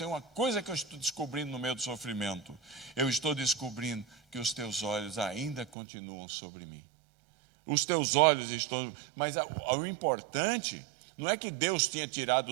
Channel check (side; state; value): left; drops out; at 5.8 s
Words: uma coisa que eu estou descobrindo no meio do sofrimento. Eu estou descobrindo que os teus olhos ainda continuam sobre mim. Os teus olhos estão... Mas o importante não é que Deus tinha tirado